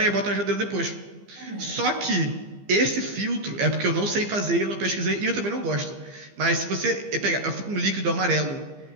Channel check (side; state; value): left; late; 15 ms